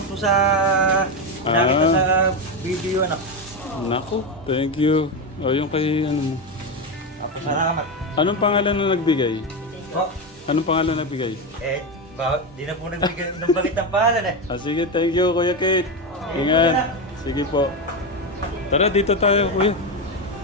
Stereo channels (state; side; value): normal; both; correlation 0.13